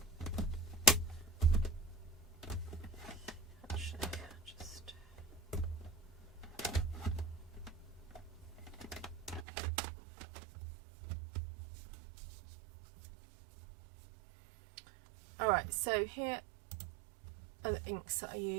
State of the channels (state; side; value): drops out; left; at 9.5 s